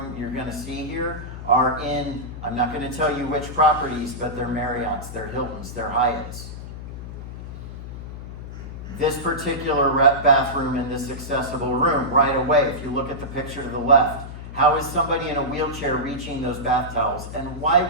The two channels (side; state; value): left; noise; hum, 10 dB below the sound